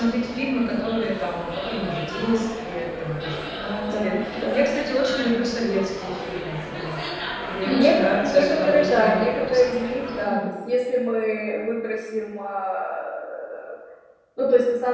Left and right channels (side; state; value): both; identical; correlation 1.00